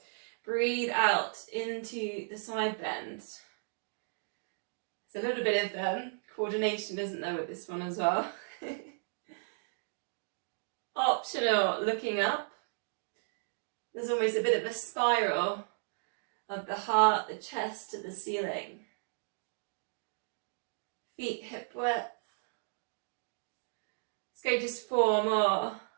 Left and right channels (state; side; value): silent; left; digital silence